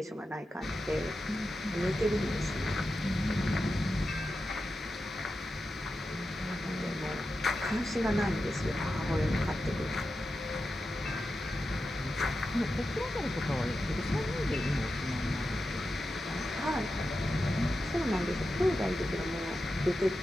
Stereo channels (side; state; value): both; normal; correlation 0.91